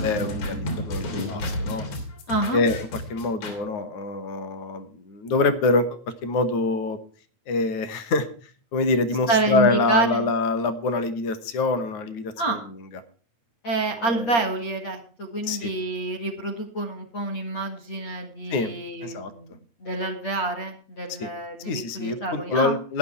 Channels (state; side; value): late; right; 9.4 ms